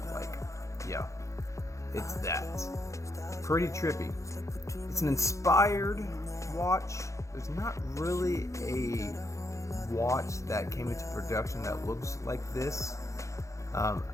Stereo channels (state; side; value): late; right; 0.15 ms